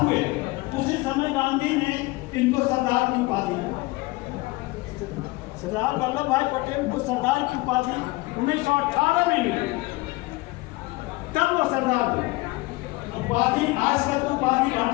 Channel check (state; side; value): quieter; right; 22.0 dB